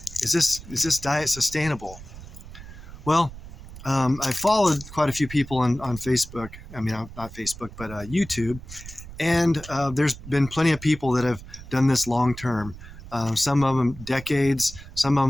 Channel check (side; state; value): right; noise; rumble, 15 dB below the sound